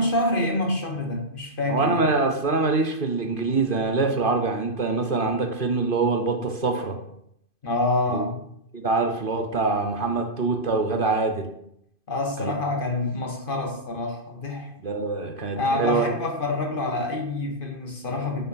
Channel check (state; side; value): late; right; 2.5 ms